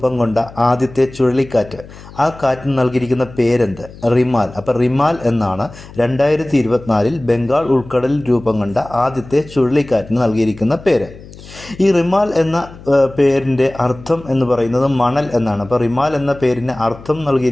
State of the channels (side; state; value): left; noise; hum, 18 dB below the sound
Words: കൊണ്ട ആദ്യത്തെ ചുഴലിക്കാറ്റ്, ആ കാറ്റിന് നൽകിയിരിക്കുന്ന പേരെന്ത്? റിമാൽ. അപ്പോൾ റിമാൽ എന്നാണ് 2024 ബംഗാൾ ഉൾക്കടലിൽ രൂപം കൊണ്ട ആദ്യത്തെ ചുഴലിക്കാറ്റിന് നൽകിയിരിക്കുന്ന പേര്. ഈ റിമാൽ എന്ന പേരിൻ്റെ അർത്ഥം എന്ന് പറയുന്നത് മണൽ എന്നാണ്. അപ്പോൾ റിമാൽ എന്ന പേരിന് അർത്ഥം